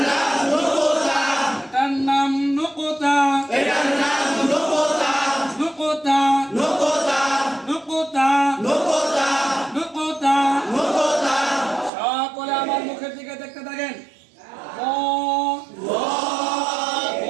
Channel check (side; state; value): left; drops out; at 11.9 s